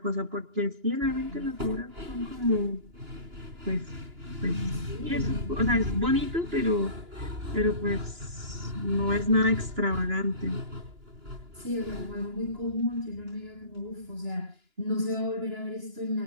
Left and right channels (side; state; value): left; late; 2.9 ms